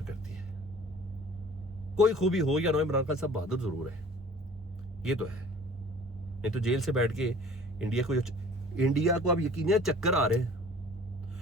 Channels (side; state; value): both; normal; correlation 0.48